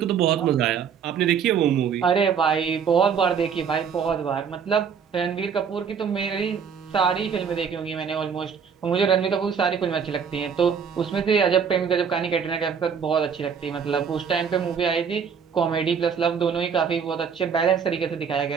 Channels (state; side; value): quieter; left; 6.9 dB